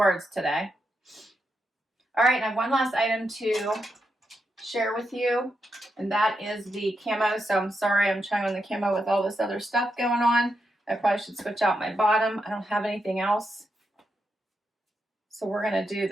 today. All right, and I have one last item to share with you, and that is the camo. So I'm sorry, I'm trying on the camo with all this other stuff going on. I probably should switch out my bottom. I don't have anything else. So we're gonna do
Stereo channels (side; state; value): both; normal; correlation 0.84